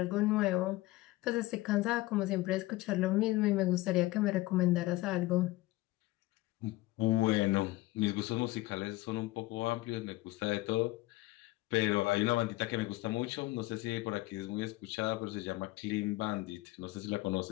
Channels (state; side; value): quieter; right; 19.2 dB